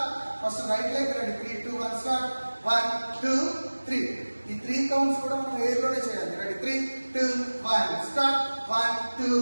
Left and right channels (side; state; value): both; inverted; correlation -1.00